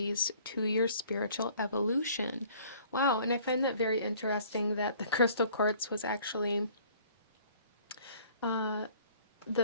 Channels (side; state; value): both; inverted; correlation -0.55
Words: to your spiritual evolution. Wow, and I find that very interesting that the crystal quartz was actually